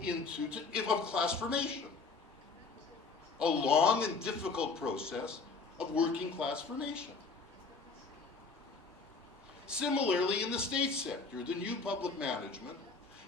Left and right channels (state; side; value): quieter; right; 4.4 dB